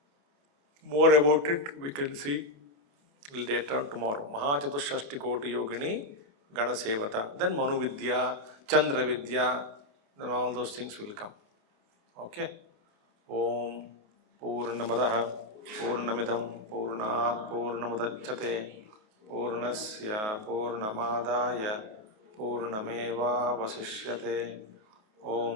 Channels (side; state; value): left; late; 28 ms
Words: More about it we can see later on tomorrow. Mahachatushashtikoti yogini ganasevata. Then Manu Vidya, Chandra Vidya, then all those things will come. Okay? Om Purnamadaha Purnamidam Purnat Purnamudachyate Purnasya Purnamadaya Purnameva Vasishyate.